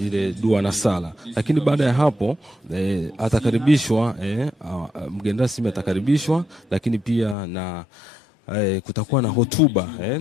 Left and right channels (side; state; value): right; drops out; at 7.4 s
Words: dua na sala. Lakini baada ya hapo atakaribishwa mgeni rasmi atakaribishwa, lakini pia na kutakuwa na hotuba